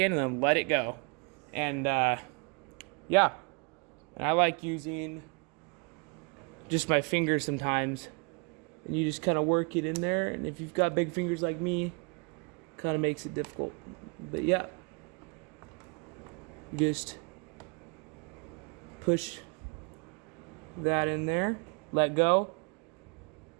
and then let it go. And yeah, and I like using just my fingers sometimes. And you just kind of work it in there. And if you've got big fingers like me, kind of makes it difficult. But yeah, just push that in there, let go.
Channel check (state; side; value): quieter; left; 32.7 dB